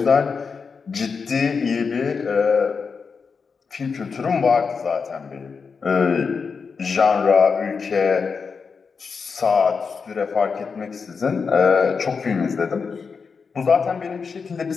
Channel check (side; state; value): right; quieter; 5.4 dB